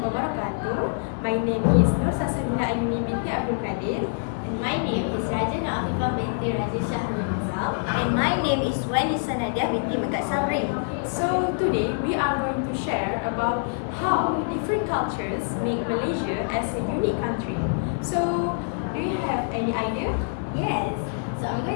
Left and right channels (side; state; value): right; silent; digital silence